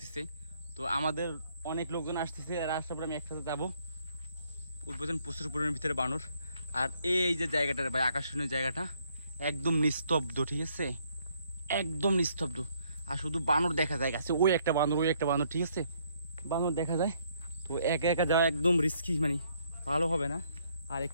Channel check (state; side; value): inverted; both; correlation -0.69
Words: তো আমাদের অনেক লোকজন আসতেছে, আর আসার পরে আমি একসাথে যাবো। বুঝলেন, প্রচুর পরিমাণের ভিতরে বানর। আর এই যে জায়গাটা ভাই, আকর্ষণীয় জায়গাটা, একদম নিস্তব্ধ, ঠিক আছে, একদম নিস্তব্ধ। আর শুধু বানর দেখা যায় গাছে, ওই একটা বানর, ঠিক আছে, বানর দেখা যায়। তো একা একা যাওয়া একদম রিস্কি, মানে ভালো হবে না। আর